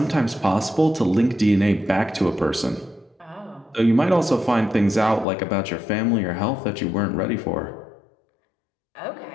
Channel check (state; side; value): drops out; right; at 5.2 s